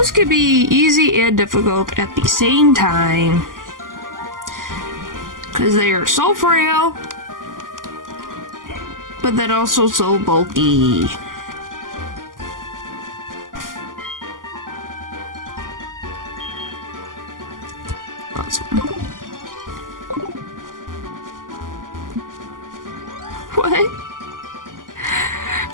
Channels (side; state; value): left; late; 0.90 ms